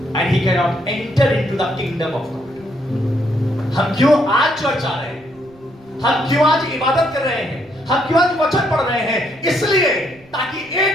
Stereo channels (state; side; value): noise; right; rumble, 28 dB below the sound